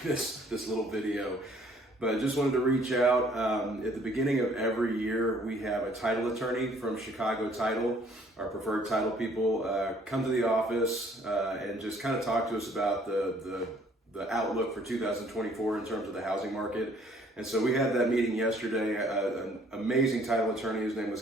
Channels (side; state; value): both; normal; correlation 0.60